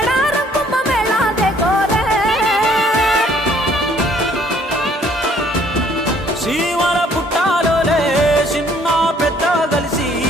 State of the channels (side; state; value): both; normal; correlation 0.61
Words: కుమ్మ మేళా దేకోరే శ్రీవర పుట్టాలోలే చిన్న పెద్ద కలిసి